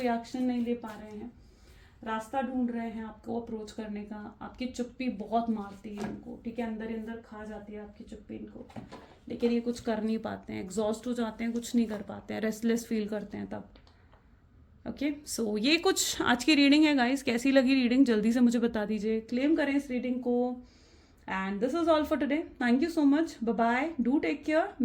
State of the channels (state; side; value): identical; both; correlation 1.00